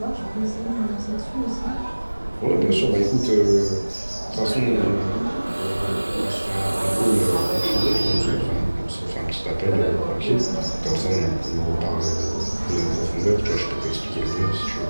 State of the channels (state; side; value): inverted; both; correlation -1.00